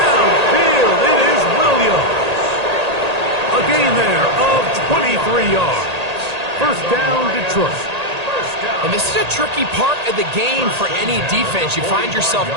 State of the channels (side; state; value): left; late; 1.8 ms